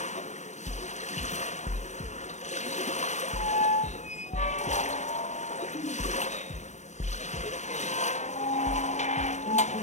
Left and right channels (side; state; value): right; late; 0.34 ms